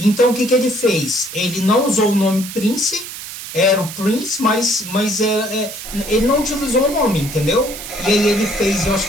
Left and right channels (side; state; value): right; noise; hiss, 11 dB below the sound